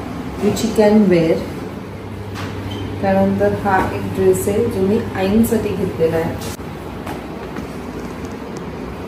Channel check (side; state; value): both; identical; correlation 1.00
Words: विच यू कॅन वेअर. त्यानंतर हा एक ड्रेस आहे जो मी आईंसाठी घेतलेला आहे.